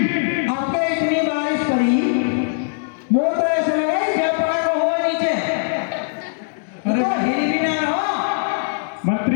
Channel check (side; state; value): right; silent; digital silence